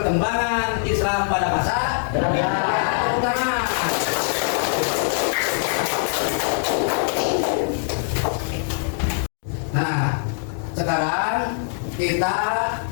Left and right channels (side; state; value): right; silent; digital silence